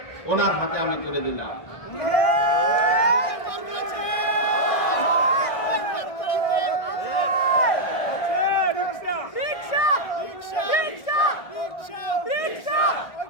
ওনার হাতে আমি তুলে দিলাম।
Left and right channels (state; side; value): late; right; 1.6 ms